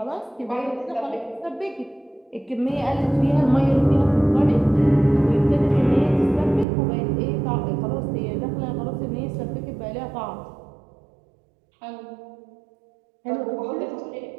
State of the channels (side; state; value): left; drops out; at 6.7 s